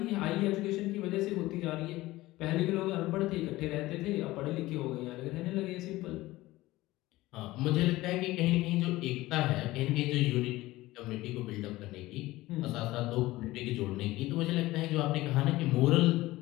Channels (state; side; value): quieter; right; 18.1 dB